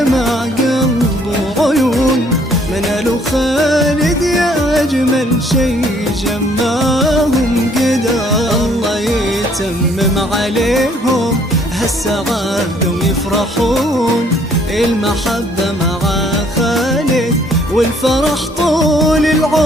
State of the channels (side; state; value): both; normal; correlation 0.63